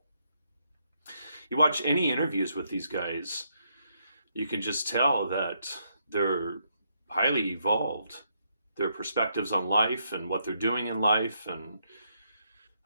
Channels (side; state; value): both; inverted; correlation -0.76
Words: You watch any interviews with these guys, you can just tell that they're highly evolved. Their perspectives on life and what they're doing in life. And